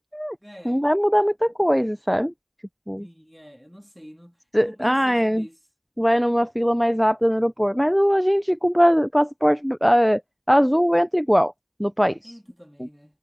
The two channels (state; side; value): identical; both; correlation 1.00